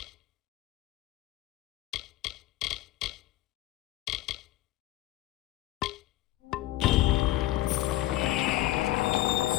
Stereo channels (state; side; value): quieter; right; 15.9 dB